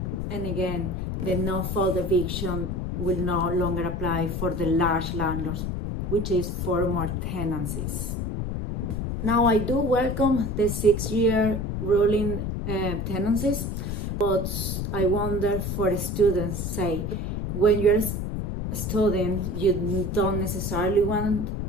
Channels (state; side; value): noise; left; rumble, 3 dB below the sound